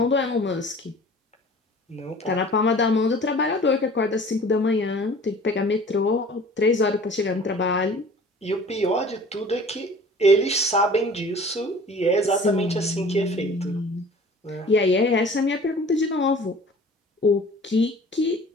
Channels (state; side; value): normal; both; correlation 0.46